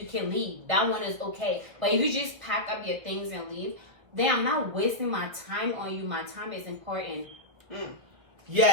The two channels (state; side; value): late; left; 1.5 ms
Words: can leave. That one is okay. But if you just pack up your things and leave, then I'm not wasting my time on you. My time is important.